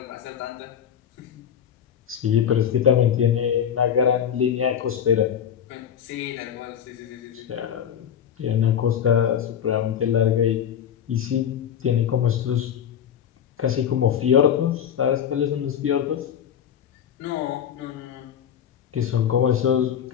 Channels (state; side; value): quieter; right; 8.9 dB